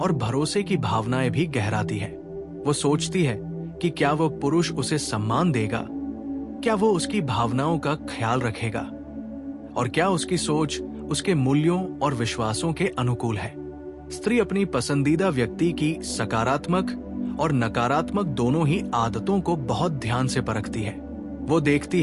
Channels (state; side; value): identical; both; correlation 1.00